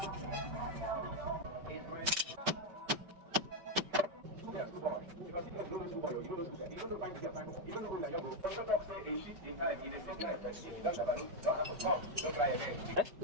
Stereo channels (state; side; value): late; left; 5.2 ms